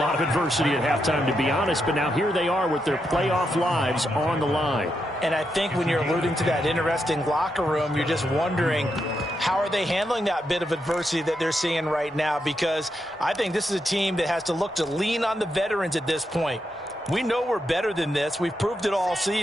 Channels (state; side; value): normal; both; correlation 0.83